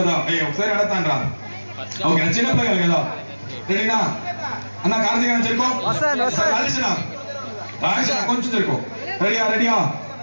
ఒకసారి అడతాను రా. ఓకే, చిన్న పిల్లలు కదా. రెడీనా? అన్న కార్తీక్ అన్న చెరుకో. కొంచెం చెరుకో. రెడీయా?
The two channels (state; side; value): inverted; both; correlation -1.00